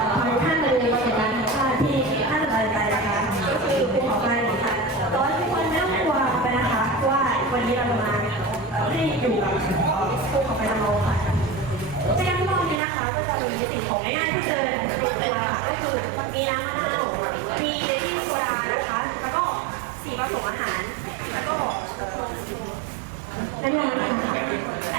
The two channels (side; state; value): left; drops out; at 12.8 s